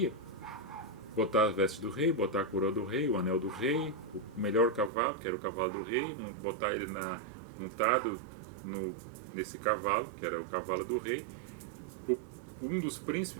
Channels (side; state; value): left; drops out; at 4.9 s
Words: Botar as vestes do rei, botar a coroa do rei, o anel do rei, o melhor cavalo, que era o cavalo do rei, botar ele montado nesse cavalo, que era o cavalo do rei. Um dos